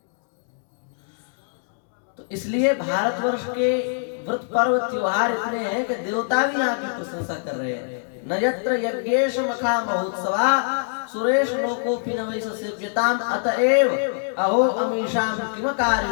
तो इसलिए भारतवर्ष के व्रत, पर्व, त्योहार इतने हैं कि देवता भी यहाँ की प्रशंसा कर रहे हैं। न यत्र यज्ञेश मखा महोत्सवा सुरेश लोकोपि न वै ससेव्यताम् अतएव अहो अमीशाम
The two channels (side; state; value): right; silent; digital silence